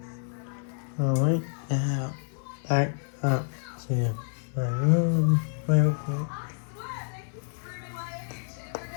Alright, now back up to my room real quick.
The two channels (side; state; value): right; silent; digital silence